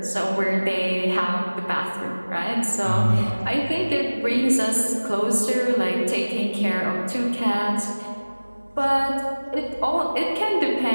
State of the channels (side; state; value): both; inverted; correlation -1.00